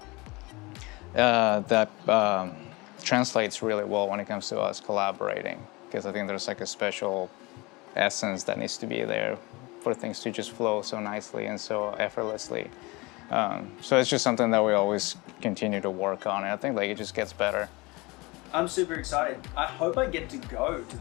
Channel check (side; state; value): right; quieter; 24.4 dB